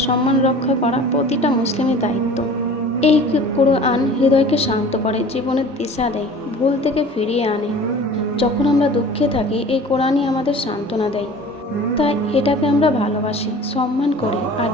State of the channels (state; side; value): normal; both; correlation 0.43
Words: সম্মান রক্ষা করা প্রতিটা মুসলিমের দায়িত্ব। এই কোরআন হৃদয়কে শান্ত করে, জীবনের দিশা দেয়, ভুল থেকে ফিরিয়ে আনে। যখন আমরা দুঃখে থাকি, এই কোরআনই আমাদের সান্ত্বনা দেয়। তাই এটাকে আমরা ভালোবাসি, সম্মান করি আর